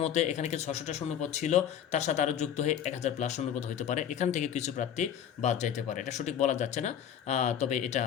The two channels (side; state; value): right; quieter; 9.3 dB